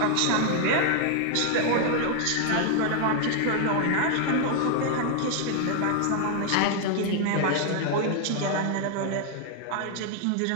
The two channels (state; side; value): different; both; correlation 0.00